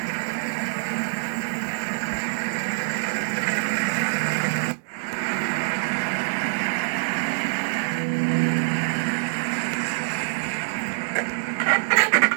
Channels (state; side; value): silent; left; digital silence